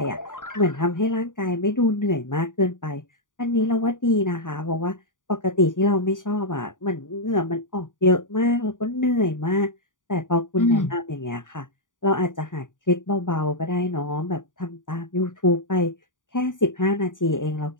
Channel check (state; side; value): late; right; 0.88 ms